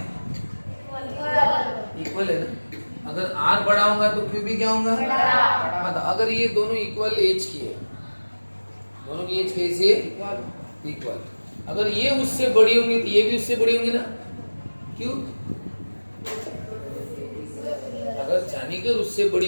इक्वल है ना। अगर आर बड़ा होगा तो क्यू भी क्या होगा? मतलब अगर ये दोनों इक्वल एज की है, दोनों की एज कैसी है? इक्वल। अगर ये उससे बड़ी होंगी तो ये भी उससे बड़ी होंगी ना। क्यों? अगर चाणक्य उससे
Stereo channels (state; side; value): inverted; both; correlation -1.00